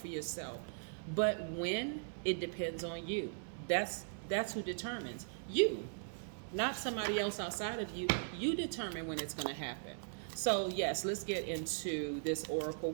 yourself. But when, it depends on you. That's who determines. You, not somebody else outside of you. You determine when it's going to happen. So yes, let's get into this oracle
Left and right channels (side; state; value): left; silent; 52 dB below the other